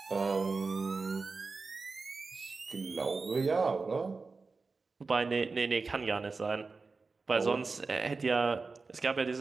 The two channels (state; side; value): quieter; left; 4.1 dB